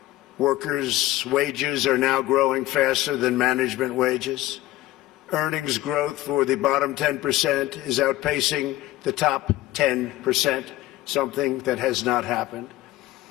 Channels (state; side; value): quieter; right; 16.4 dB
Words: Workers' wages are now growing faster than management wages. Earnings growth for the bottom 10% is outpacing the top 10%, something that has not happened.